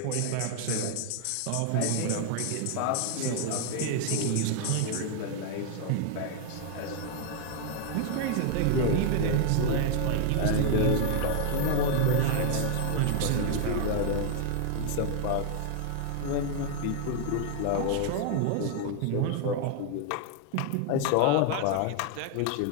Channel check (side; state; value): both; different; correlation 0.00